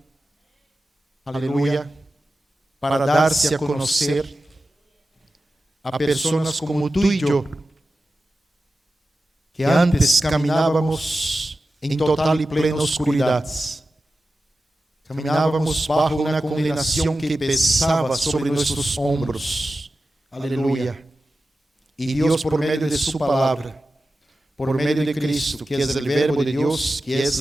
aleluya, para darse a conocer a personas como tú y yo, que antes caminábamos en total y plena oscuridad. Caminábamos bajo una condenación que pesaba sobre nuestros hombros. Aleluya. Y Dios, por medio de su palabra, por medio de Cristo, que es el verbo de Dios, que es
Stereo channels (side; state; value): both; normal; correlation 0.94